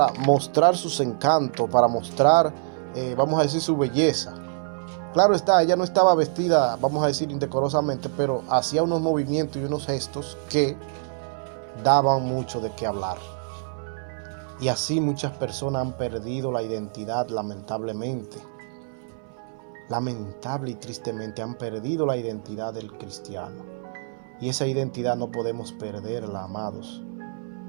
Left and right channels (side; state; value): left; silent; 59 dB below the other